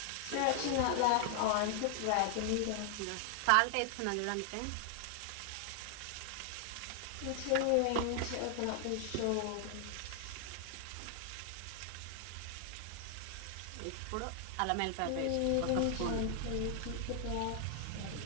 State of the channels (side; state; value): both; different; correlation 0.00